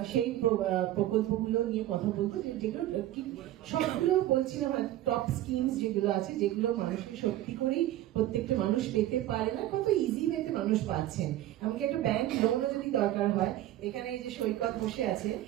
সেই প্রকল্পগুলো নিয়ে কথা বলবো, যেগুলো সবগুলো বলছিলাম টপ স্কিমস যেগুলো আছে, যেগুলো মানুষকে সত্যি করেই প্রত্যেকটা মানুষ পেতে পারে না, কত ইজি ওয়েতে মানুষ পাচ্ছেন। এমনকি একটা ব্যাংক লোনও যদি দরকার হয়, এখানে এই যে সৈকত বসে আছে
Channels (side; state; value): left; quieter; 14.1 dB